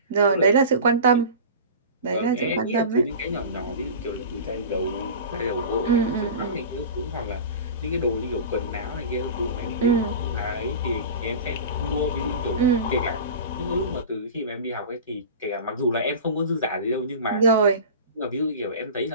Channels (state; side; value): inverted; both; correlation -0.33